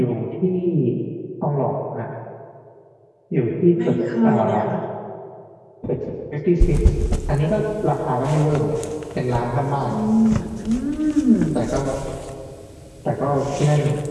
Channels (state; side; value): identical; both; correlation 1.00